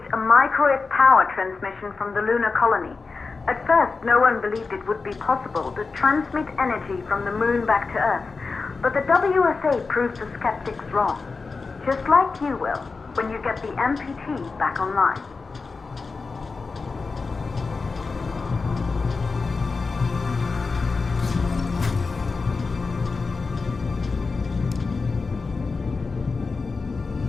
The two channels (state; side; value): quieter; right; 4.3 dB